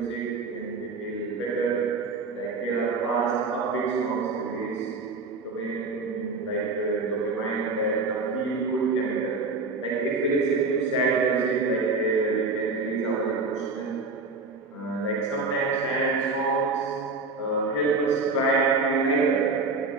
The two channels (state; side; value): quieter; left; 3.9 dB